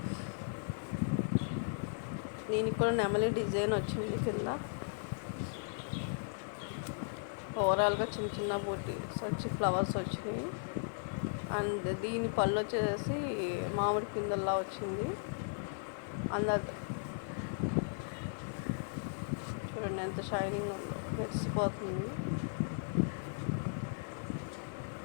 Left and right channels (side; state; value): right; silent; digital silence